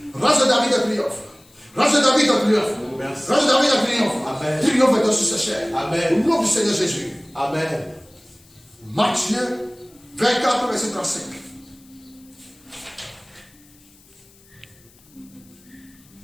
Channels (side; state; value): left; noise; hiss, 28 dB below the sound